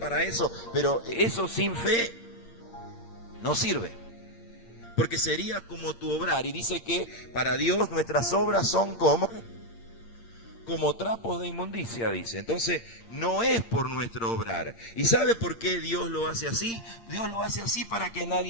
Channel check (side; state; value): right; late; 8.7 ms